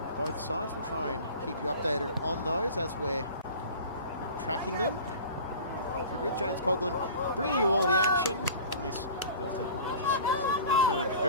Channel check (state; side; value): inverted; both; correlation -0.40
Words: both sides. We'll try and keep you updated on those as we're tracking them. With James Coughlin bringing you all the action on this Thursday morning, which has turned